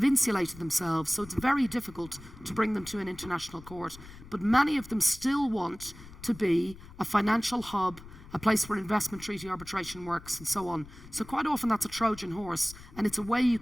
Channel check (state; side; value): noise; left; rumble, 18 dB below the sound